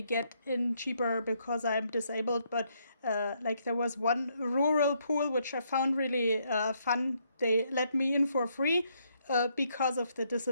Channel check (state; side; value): inverted; both; correlation -0.73